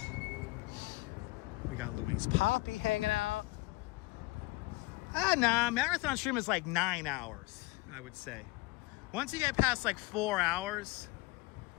We got Louise Poppy hanging out. Nah, marathon stream is like 9 hours, I would say. Once you get past like 4 hours,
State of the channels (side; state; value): right; quieter; 22.4 dB